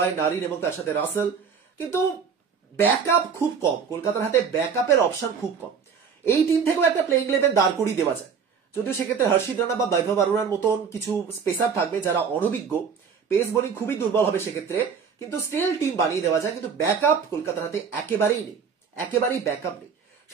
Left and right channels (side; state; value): left; quieter; 6.3 dB